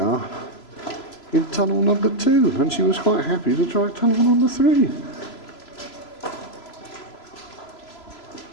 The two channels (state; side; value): late; right; 3.0 ms